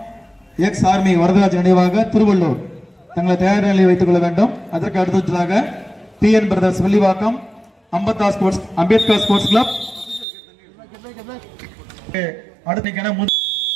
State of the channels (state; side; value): drops out; left; at 10.2 s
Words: எக்ஸ் ஆர்மி வரதராஜ் நினைவாக திருவள்ளூர் தங்களை தயார் நிலையை வைத்துக் கொள்ள வேண்டும். அதற்கு அடுத்ததாக PN brothers Villivakkam Ambedkar sports club அடுத்த